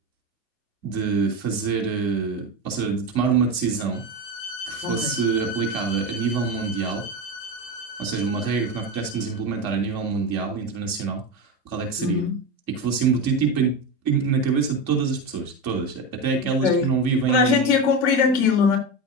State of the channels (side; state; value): left; late; 2.3 ms